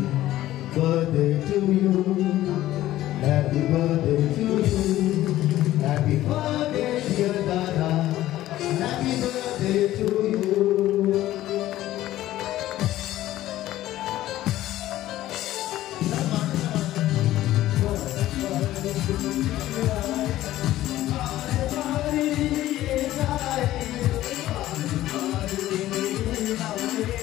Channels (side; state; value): right; quieter; 14.6 dB